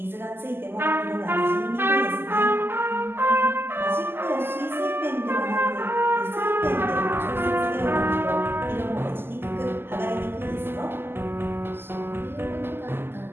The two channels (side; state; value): left; late; 0.11 ms